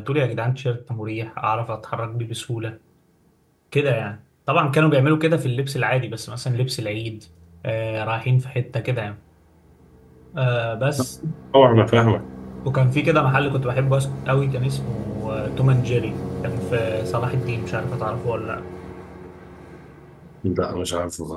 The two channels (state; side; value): identical; both; correlation 1.00